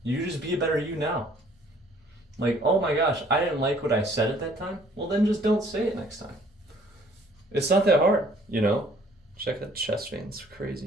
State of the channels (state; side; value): normal; both; correlation 0.58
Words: You just be a better you now. Oh my gosh, I didn't like what I said at that time. Well, then just don't say it next time. It's not that hard, Check that chest vein, it's